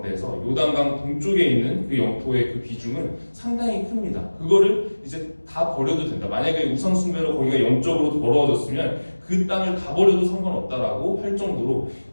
요단강 동쪽에 있는 그 영토의 그 비중은 상당히 큽니다. 그거를 이제 다 버려도 된다. 만약에 우상 숭배로 거기가 영적으로 더러워졌으면 그 땅을 다 버려도 상관없다라고 할 정도로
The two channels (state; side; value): inverted; both; correlation -1.00